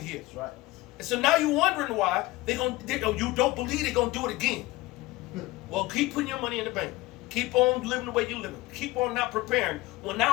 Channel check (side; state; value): right; quieter; 20.1 dB